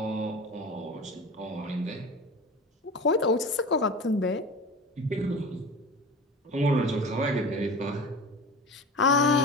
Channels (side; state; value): both; normal; correlation 0.33